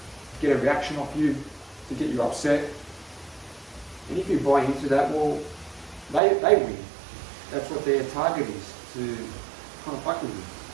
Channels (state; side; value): drops out; left; at 6.2 s